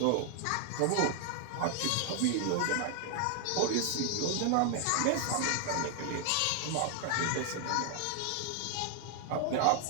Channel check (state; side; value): different; both; correlation 0.00